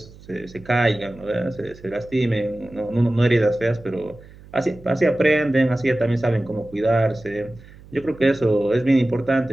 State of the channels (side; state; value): right; noise; hum, 21 dB below the sound